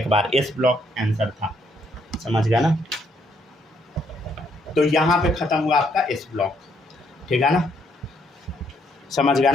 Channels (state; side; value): normal; both; correlation 0.71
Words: बार, एस ब्लॉक आंसर था, समझ गया ना। तो यहाँ पे ख़त्म हुआ आपका एस ब्लॉक, ठीक है ना, समझ गया